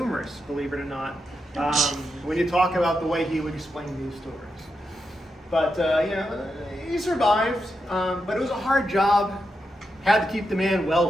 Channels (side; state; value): both; normal; correlation 0.86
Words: believe it or not, when you talk about the way he would explain these stories. But, he survived, but it was a hard job. Had to keep the man